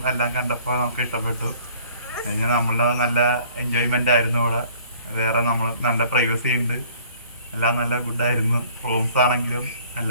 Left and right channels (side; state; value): both; inverted; correlation -0.55